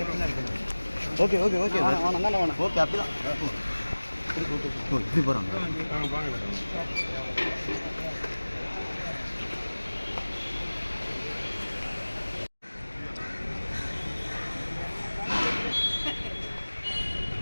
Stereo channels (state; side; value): inverted; both; correlation -1.00